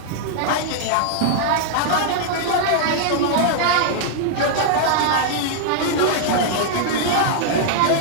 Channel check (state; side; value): different; both; correlation -0.01